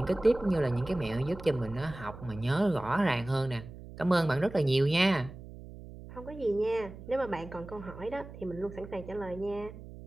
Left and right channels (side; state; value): right; noise; hum, 15 dB below the sound